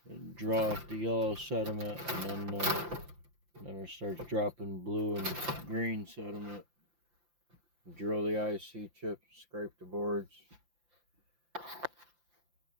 And draw off the yellow sediment, and then it starts dropping blue and green sediment. Drill the IC chips, scrape the boards.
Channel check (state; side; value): late; left; 5.8 ms